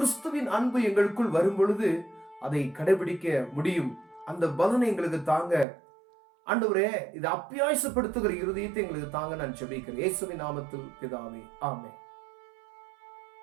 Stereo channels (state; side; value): drops out; left; at 5.7 s